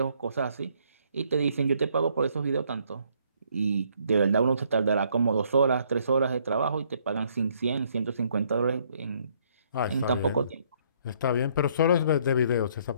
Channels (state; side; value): inverted; both; correlation -0.67